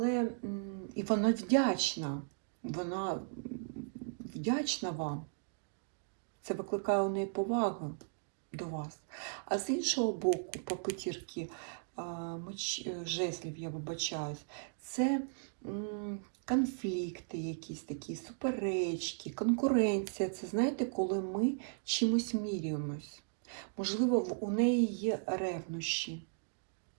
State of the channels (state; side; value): silent; left; digital silence